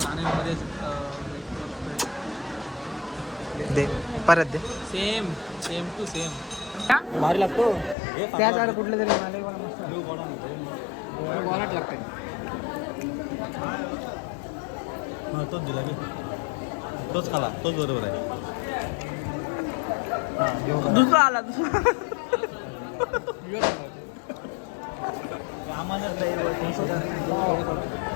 दे परत दे. सेम टू सेम भारी लागतो. त्या झाड कुठलं तरी मला मस्त बोलाट लागते. तोच दिला मी, तोच खाला, तोच बरोबर आहे. दुसरा आला दुसरा.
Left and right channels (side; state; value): right; drops out; at 8.0 s